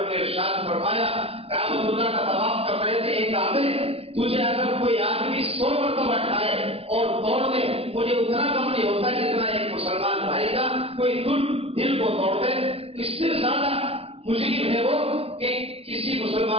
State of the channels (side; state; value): left; late; 0.28 ms